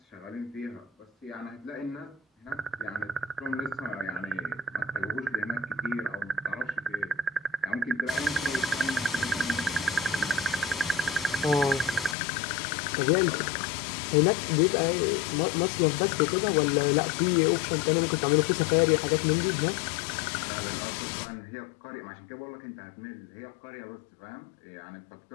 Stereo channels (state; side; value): drops out; right; at 12.2 s